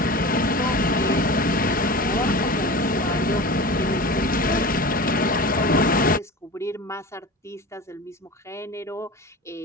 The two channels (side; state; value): both; normal; correlation 0.32